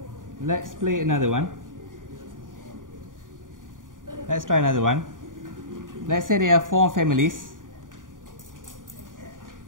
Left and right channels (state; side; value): late; left; 0.89 ms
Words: let's play another one. Let's try another one. Let's say there are 4 families.